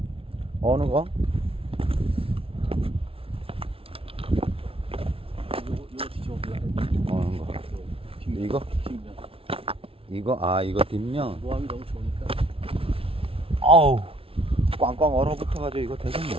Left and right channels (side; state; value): left; late; 0.26 ms